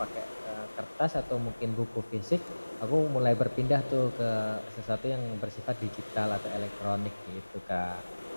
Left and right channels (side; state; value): both; inverted; correlation -1.00